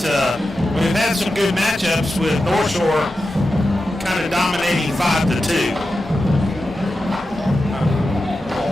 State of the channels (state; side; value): normal; both; correlation 0.91